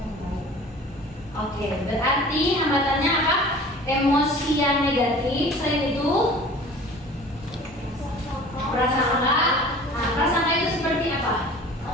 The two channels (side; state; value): both; normal; correlation 0.44